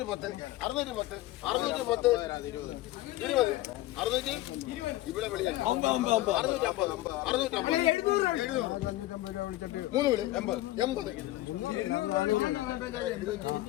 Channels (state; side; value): quieter; right; 16.7 dB